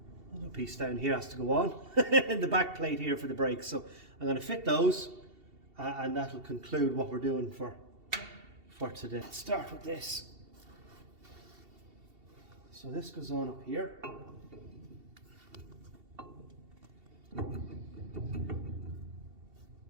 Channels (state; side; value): late; left; 2.7 ms